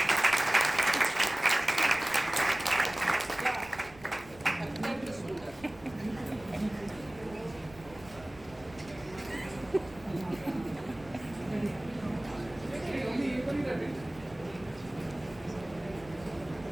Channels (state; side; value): noise; right; rumble, 21 dB below the sound